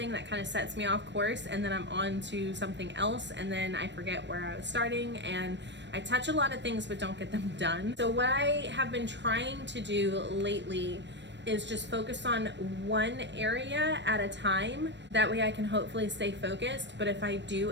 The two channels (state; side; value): late; left; 0.52 ms